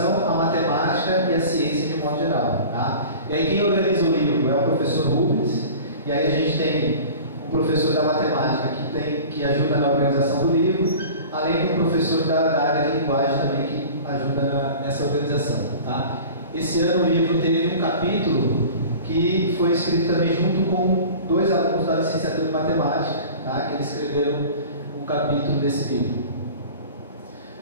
a matemática e a ciência de modo geral. Tá? E aí quem organiza o livro é o professor Rubens, e aí a gente tem um professor da matemática que ajuda na organização do livro, além do professor da área de linguagem também que ajuda nessa organização. Tá? Esse ano o livro teve um capítulo que foi escrito também junto com 2 alunos da licenciatura de matemática, tá? Que eles escreveram um capítulo desse livro.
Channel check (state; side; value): inverted; both; correlation -0.40